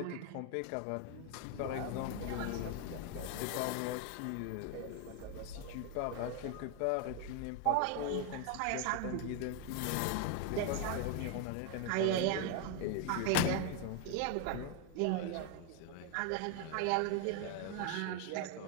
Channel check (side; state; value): both; different; correlation 0.01